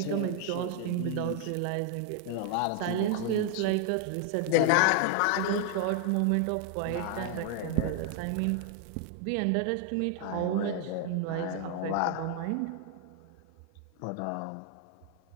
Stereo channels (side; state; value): both; different; correlation 0.00